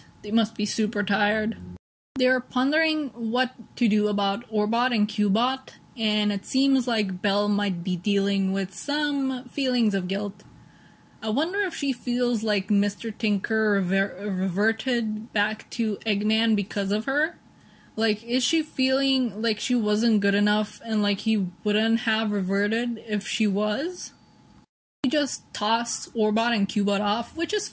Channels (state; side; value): identical; both; correlation 1.00